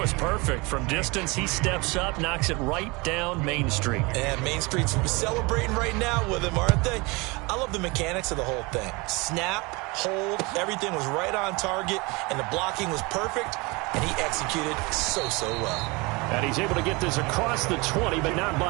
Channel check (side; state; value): left; quieter; 26.0 dB